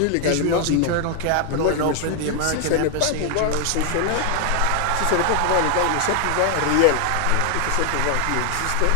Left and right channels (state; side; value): different; both; correlation 0.00